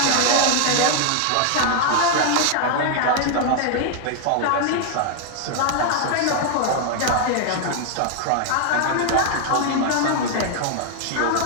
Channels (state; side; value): different; both; correlation 0.00